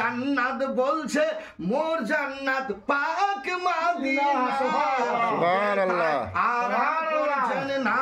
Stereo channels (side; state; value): both; identical; correlation 1.00